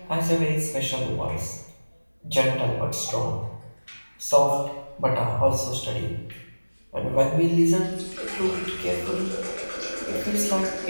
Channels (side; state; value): both; inverted; correlation -1.00